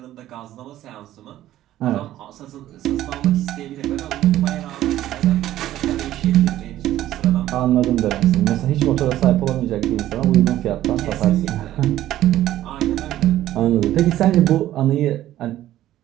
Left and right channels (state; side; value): quieter; left; 13.6 dB